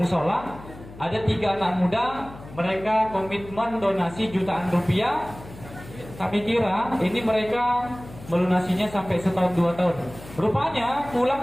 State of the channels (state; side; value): noise; left; hum, 17 dB below the sound